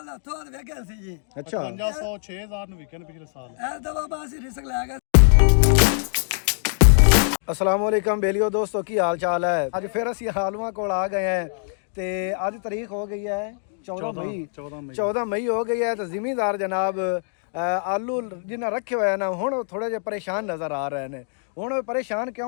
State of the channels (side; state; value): right; silent; digital silence